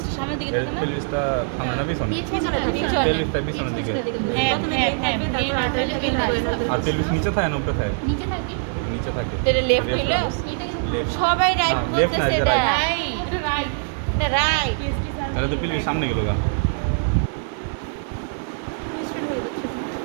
সামনের দিকে থাকে না? পেলভিসটা সামনে না পিছনে পিছনে থাকে, পেলভিসটা পিছনের দিকে হ্যাঁ হ্যাঁ হ্যাঁ এই নাটকটা কেন আর পেলভিস নিচে থাকে না উপরে থাকে নিচে থাকে নিচে থাকে এটা লেফট হলো এটা কিন্তু সবাই রাইট হ্যাঁ, left না, বলতেছে এটা এটা right. রাইট এটা রাইট তাহলে তো পেলভিস সামনে গেল গা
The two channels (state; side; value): silent; left; digital silence